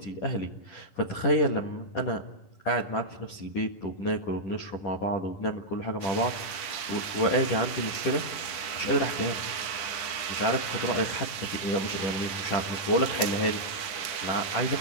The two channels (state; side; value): late; right; 10 ms